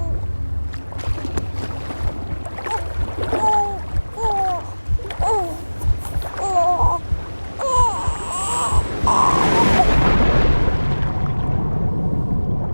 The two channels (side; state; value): both; inverted; correlation -1.00